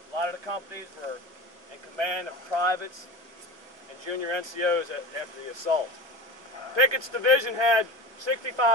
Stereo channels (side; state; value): left; late; 1.2 ms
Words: lot of the companies were in command of privates and junior NCOs after the assault. Pickett's division had